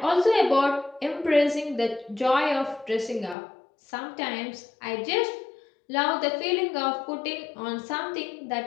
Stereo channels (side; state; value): right; drops out; at 3.4 s